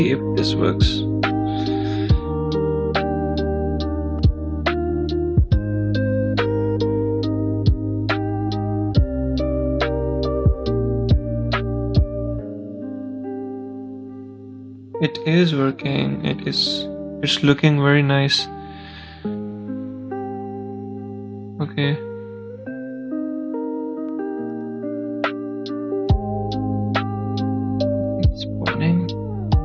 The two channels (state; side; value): identical; both; correlation 1.00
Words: if this works. It is working. It's looking very nice. Okay. It's spawning.